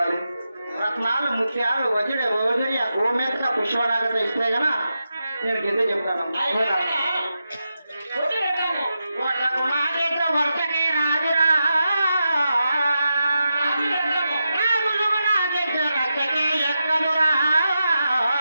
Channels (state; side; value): inverted; both; correlation -0.88